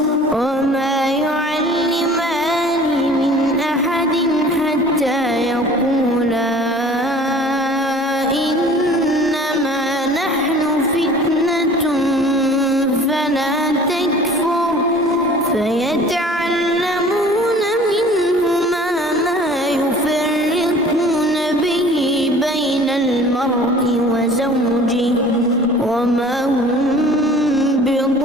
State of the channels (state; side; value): normal; both; correlation 0.47